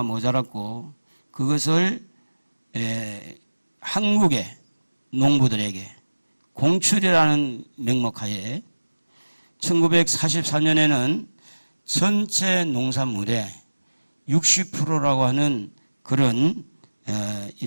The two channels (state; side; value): inverted; both; correlation -1.00